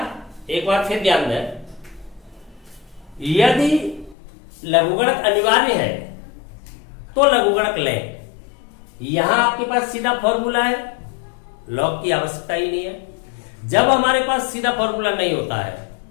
एक बार फिर ध्यान दें, यदि लघुगणक अनिवार्य है तो लघुगणक लें। यहां आपके पास सीधा फॉर्मूला है, लॉग की आवश्यकता ही नहीं है। जब हमारे पास सीधा फॉर्मूला नहीं होता है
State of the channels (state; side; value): drops out; right; at 4.2 s